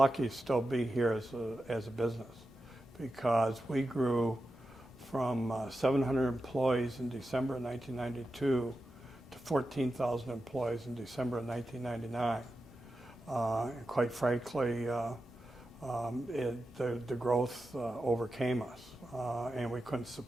to still be here as a business, because we grew from 700 employees in December of 1992 to 14,000 employees in December of 1999. And quite frankly, the growth overcame us, and we couldn't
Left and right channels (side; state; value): both; normal; correlation 0.91